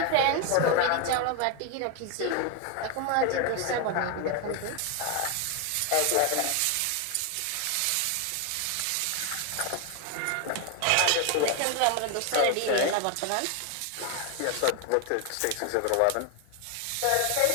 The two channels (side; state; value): both; different; correlation 0.01